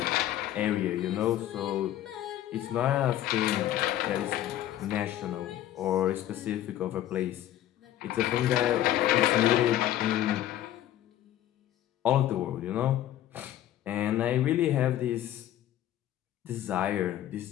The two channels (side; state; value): right; quieter; 12.6 dB